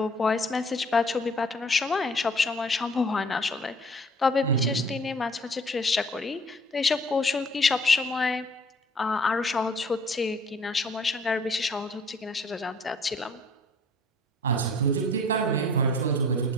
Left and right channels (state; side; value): normal; both; correlation 0.54